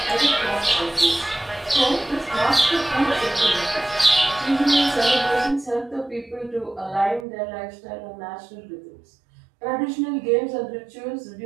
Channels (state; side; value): drops out; left; at 7.2 s